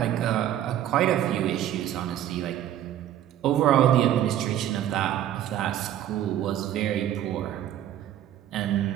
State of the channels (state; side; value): quieter; left; 11.5 dB